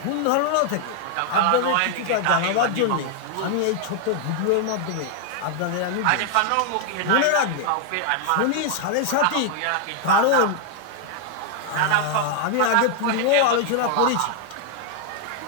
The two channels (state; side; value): different; both; correlation 0.00